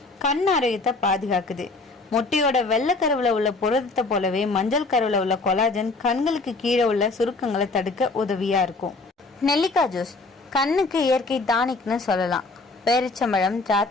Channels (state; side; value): quieter; right; 3.5 dB